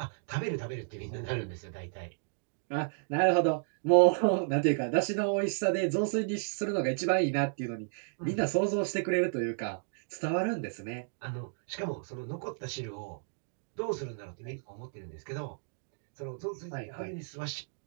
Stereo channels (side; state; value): left; silent; digital silence